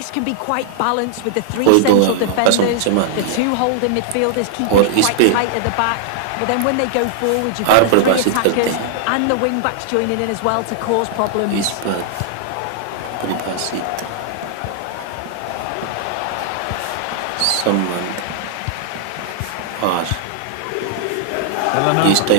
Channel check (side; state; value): both; different; correlation -0.01